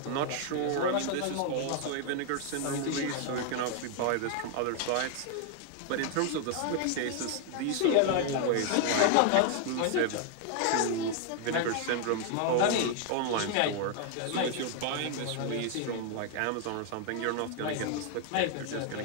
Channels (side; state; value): both; different; correlation 0.00